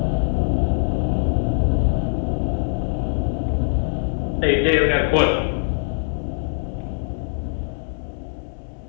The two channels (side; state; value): right; silent; 64 dB below the other